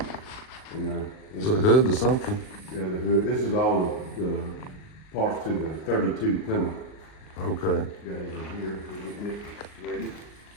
It's a hood or something. Yeah, the hood. This is all the parts to the 32 Plymouth. Okay. Got it in here. We're getting it ready.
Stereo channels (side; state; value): right; late; 39 ms